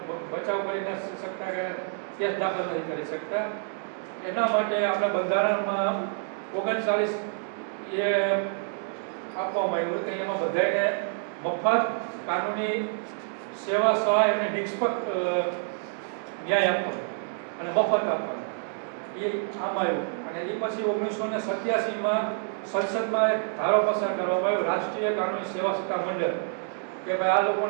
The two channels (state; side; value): silent; left; 56 dB below the other